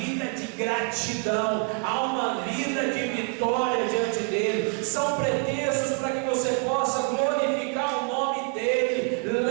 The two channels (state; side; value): quieter; left; 35.5 dB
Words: de gratidão, a uma vida de vitória diante dele. São pretextos para que você possa glorificar o nome dele.